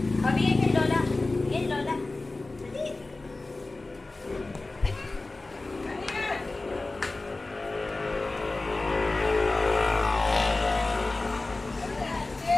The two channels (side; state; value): right; quieter; 3.2 dB